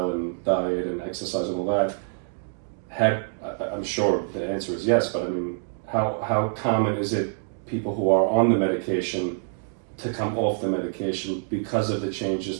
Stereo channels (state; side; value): silent; left; digital silence